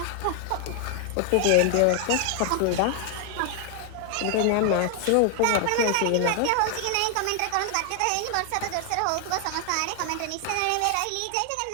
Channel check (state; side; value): different; both; correlation 0.00